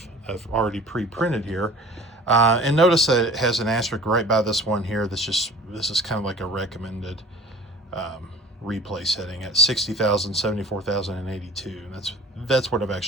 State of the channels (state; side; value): normal; both; correlation 0.44